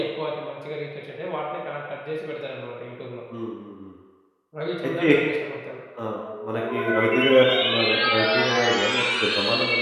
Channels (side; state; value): both; identical; correlation 1.00